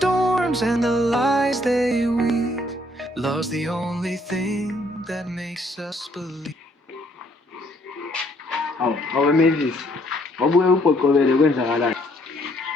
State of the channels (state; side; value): normal; both; correlation 0.67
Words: and the lies they weave, love's the only thing that makes us believe. Mavis, wabuye uqoqobele kwenzakalayo.